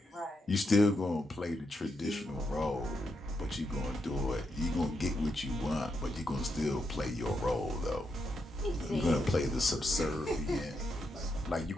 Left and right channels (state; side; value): normal; both; correlation 0.82